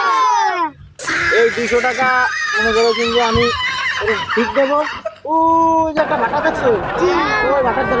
এই 200 টাকা মনে করো কিন্তু আমি ঠিক দেবো। ওই যে একটা ভাটা দেখছো, ওই ভাটার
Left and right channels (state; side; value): identical; both; correlation 1.00